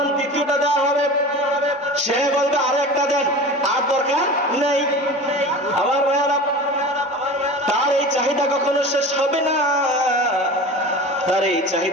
তৃতীয়টা দেওয়া হবে সে বলবে আর একটা দেন, আর দরকার নেই। আমার ভাইয়েরা, তার এই চাহিদা কখনো শেষ হবে না, তার এই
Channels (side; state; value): both; normal; correlation 0.34